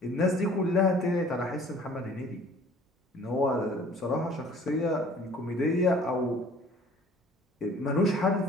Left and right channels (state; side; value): normal; both; correlation 0.51